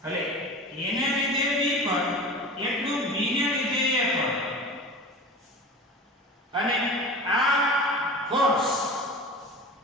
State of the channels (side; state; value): both; normal; correlation 0.34